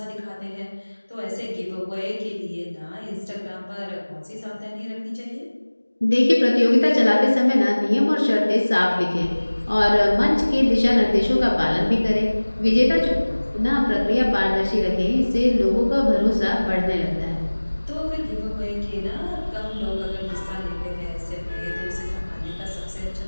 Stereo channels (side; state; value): both; inverted; correlation -1.00